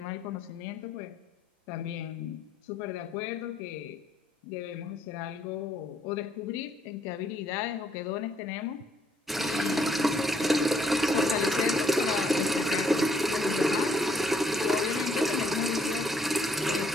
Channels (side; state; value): both; normal; correlation 0.69